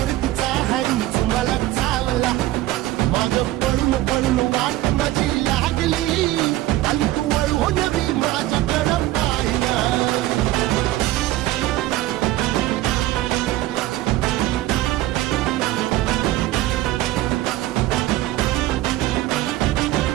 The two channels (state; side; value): quieter; left; 16.1 dB